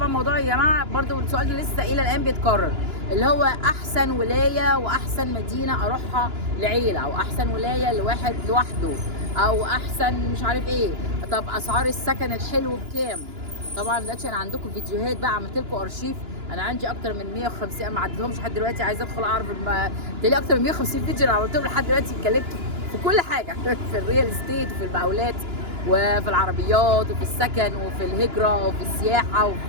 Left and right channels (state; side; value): late; left; 2.9 ms